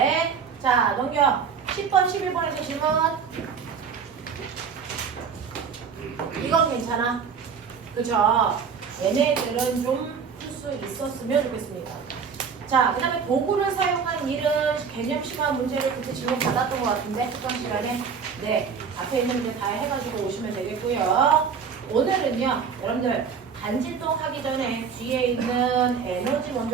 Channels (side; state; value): left; quieter; 6.2 dB